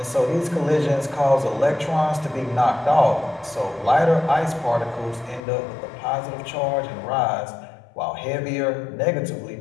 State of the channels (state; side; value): drops out; right; at 5.4 s